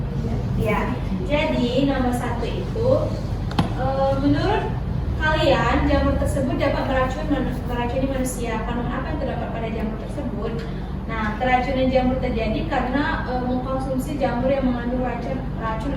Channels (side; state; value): both; identical; correlation 1.00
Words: Ya. Jadi nomor 1 itu, menurut kalian jamur tersebut dapat meracuni manusia. Kandungan apa yang terdapat pada jamur tersebut? Nah, keracunan jamur terjadi karena mengkonsumsi jamur yang mengandung racun